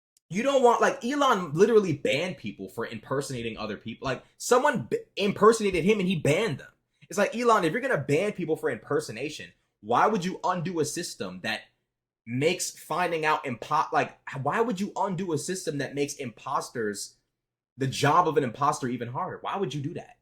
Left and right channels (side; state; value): both; identical; correlation 1.00